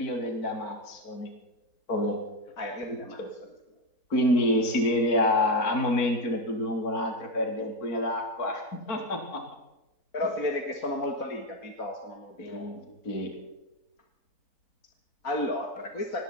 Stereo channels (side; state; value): right; late; 4.4 ms